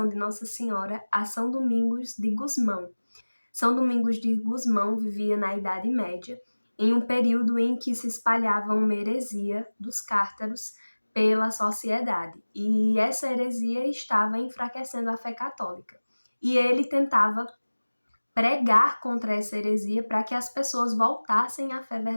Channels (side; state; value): both; inverted; correlation -1.00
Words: de Nossa Senhora a São Domingos de Gusmão. São Domingos de Gusmão vivia na Idade Média, em um período em que se espalhava uma heresia dos cártaros pela sociedade, e essa heresia estava enfraquecendo a fé católica. E ele tentava pregar contra essa heresia para que as pessoas voltassem à fé